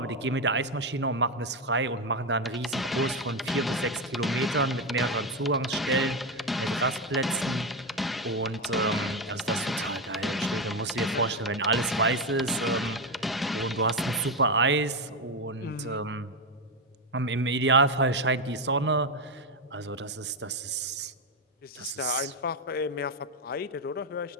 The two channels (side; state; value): both; normal; correlation 0.10